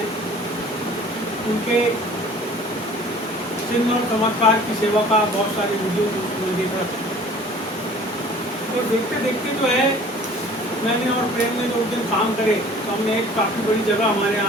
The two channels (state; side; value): normal; both; correlation 0.48